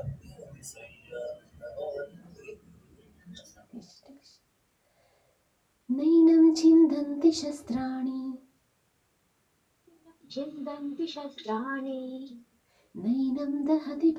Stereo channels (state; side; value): identical; both; correlation 1.00